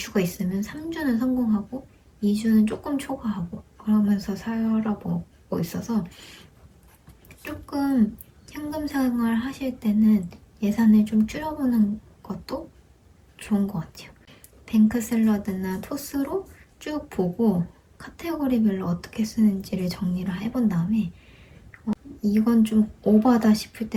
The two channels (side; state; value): both; identical; correlation 1.00